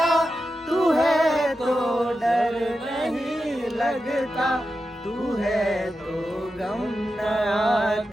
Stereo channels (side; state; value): both; normal; correlation 0.90